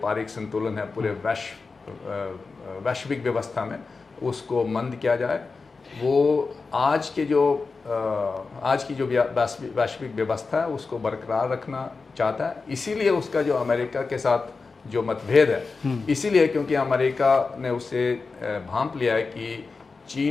संतुलन है पूरे वैश्विक व्यवस्था में उसको मंद किया जाए। वो आज की जो वैश्विक व्यवस्था है उसको बरकरार रखना चाहता है। इसीलिए उसका जो अमेरिका के साथ जो मतभेद है, इसीलिए क्योंकि अमेरिका ने उसे भांप लिया है कि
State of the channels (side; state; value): right; quieter; 4.3 dB